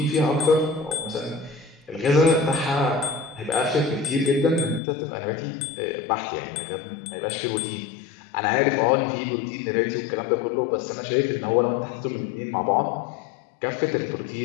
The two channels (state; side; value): drops out; right; at 4.8 s